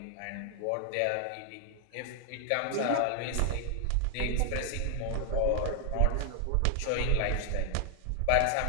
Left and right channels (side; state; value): both; different; correlation 0.00